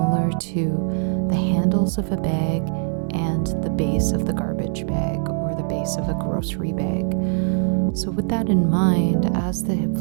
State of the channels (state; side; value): silent; left; 56 dB below the other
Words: to the handles of a bag and the base of the garbage bag or the base of a grocery bag. So with that in mind, as the hip